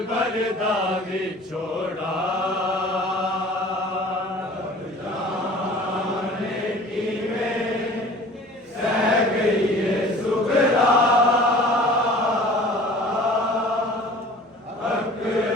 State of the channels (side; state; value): both; normal; correlation 0.45